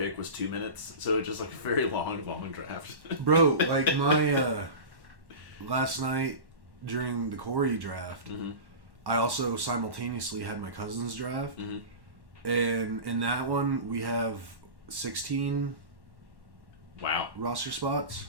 was 2 minutes, so it was just like a very long draft. Bro, like my last night during the Corey draft, mm-hmm. I also simultaneously had my cousin's draft, mm-hmm. and in that one we have 16 roster spots,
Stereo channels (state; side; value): late; left; 1.1 ms